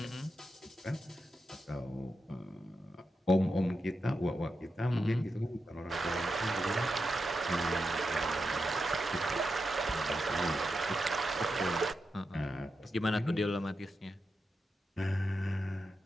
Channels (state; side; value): normal; both; correlation 0.87